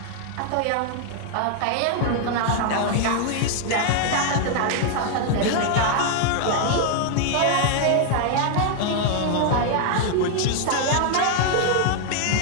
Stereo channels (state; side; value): different; both; correlation 0.00